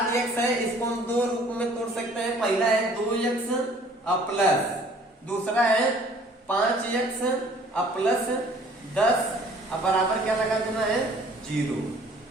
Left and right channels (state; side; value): normal; both; correlation 0.55